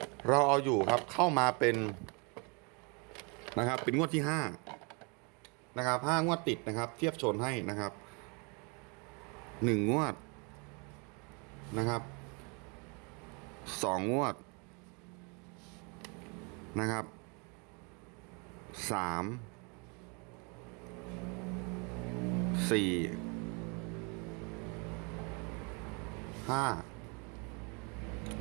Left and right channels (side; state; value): left; quieter; 33.0 dB